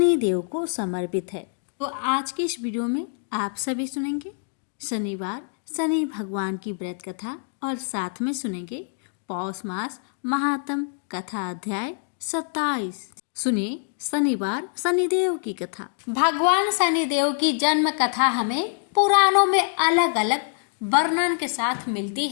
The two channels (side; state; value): right; silent; 62 dB below the other